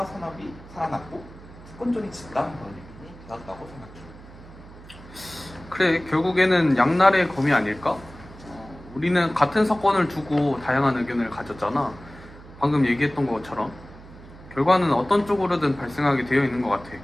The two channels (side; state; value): right; noise; hum, 19 dB below the sound